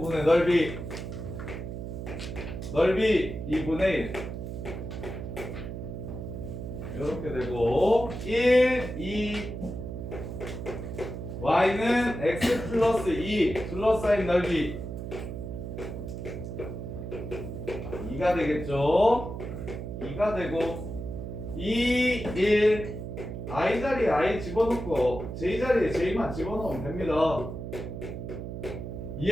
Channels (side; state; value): right; noise; hum, 7 dB below the sound